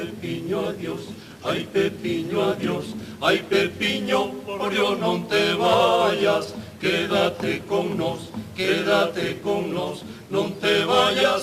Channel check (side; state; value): both; identical; correlation 1.00